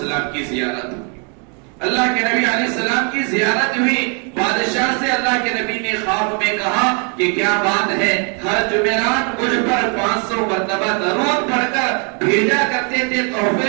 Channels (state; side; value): quieter; left; 37.1 dB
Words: کی زیارت، اللہ کے نبی علیہ السلام کی زیارت ہوئی. بادشاہ سے اللہ کے نبی نے خواب میں کہا کہ کیا بات ہے، ہر جمعرات مجھ پر 500 مرتبہ درود پڑھ کر بھیجا کرتے تھے